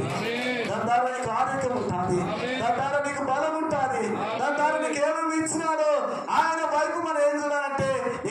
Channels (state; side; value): identical; both; correlation 1.00